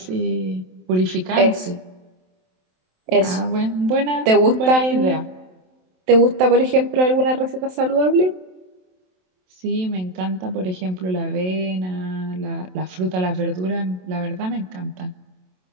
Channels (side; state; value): left; late; 27 ms